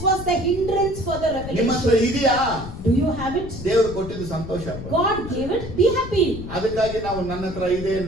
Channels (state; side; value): noise; left; rumble, 10 dB below the sound